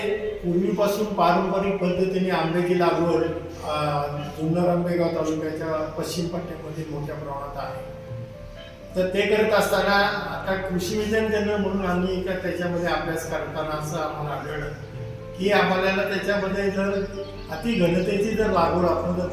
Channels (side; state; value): both; identical; correlation 1.00